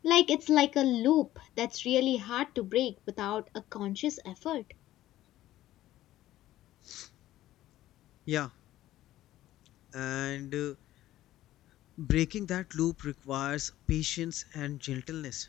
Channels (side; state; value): right; quieter; 14.5 dB